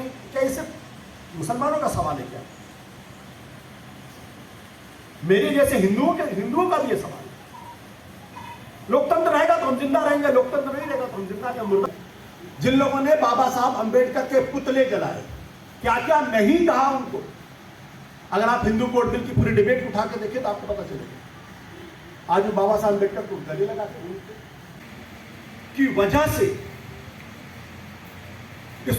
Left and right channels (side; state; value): both; identical; correlation 1.00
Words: क्या इसे मुसलमानों का सवाल है? क्या मेरे जैसे हिंदुओं का भी ये सवाल है। लोकतंत्र रहेगा तो हम जिंदा रहेंगे, लोकतंत्र नहीं रहेगा तो हम जिंदा क्या मुर्दा। जिन लोगों ने बाबा साहब अंबेडकर के पुतले जलाए, क्या क्या नहीं कहा उनको। अगर आप हिंदू कोड बिल की पूरी डिबेट उठा के देखें तो आपको पता चलेगा। आज बाबा साहब अंबेडकर को गले लगाते हैं की वजह से